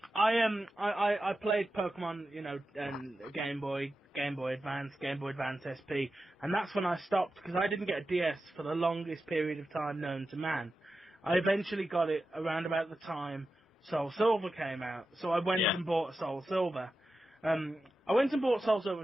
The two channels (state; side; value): normal; both; correlation 0.91